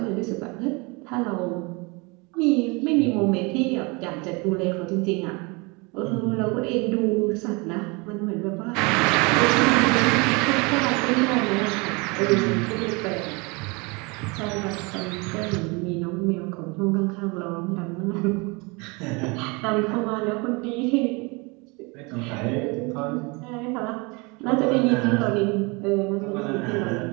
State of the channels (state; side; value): quieter; left; 28.1 dB